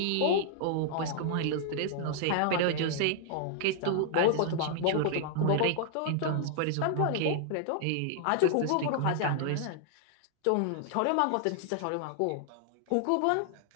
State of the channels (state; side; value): different; both; correlation -0.01